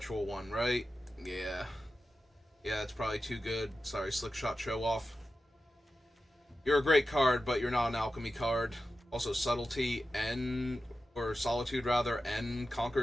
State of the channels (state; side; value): normal; both; correlation 0.92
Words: one, right? Yeah. Yeah, it's probably too good. Sorry, Slick Shot Show Off. You're a great card, but you're not an alchemy card. Also, Subtlety, N, or Solitude rather, N